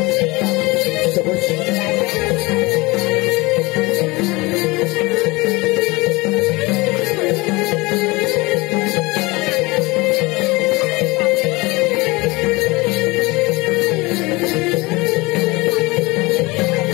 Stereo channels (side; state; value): right; quieter; 23.5 dB